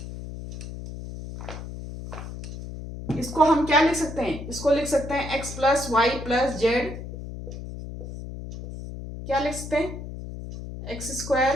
इसको हम क्या लिख सकते हैं, इसको लिख सकते हैं x plus y plus z, क्या लिख सकते हैं, x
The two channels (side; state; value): left; noise; hum, 10 dB below the sound